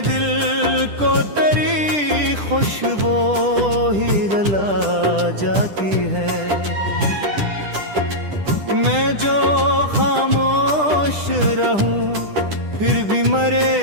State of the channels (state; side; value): late; left; 10 ms